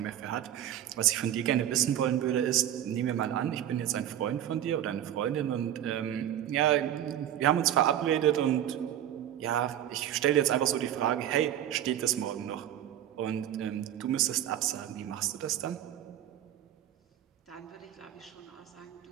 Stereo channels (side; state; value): left; quieter; 11.3 dB